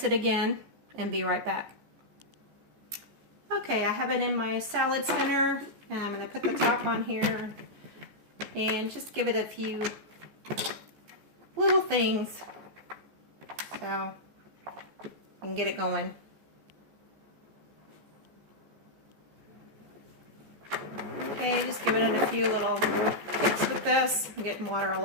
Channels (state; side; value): late; left; 14 ms